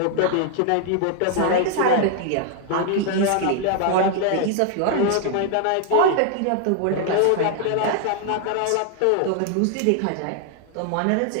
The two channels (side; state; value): both; different; correlation 0.00